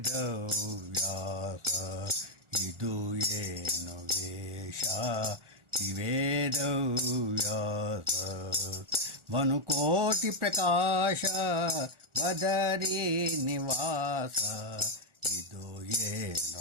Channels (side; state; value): left; late; 1.4 ms